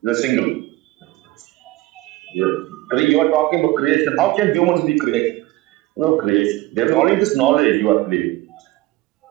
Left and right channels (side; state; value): left; quieter; 18.4 dB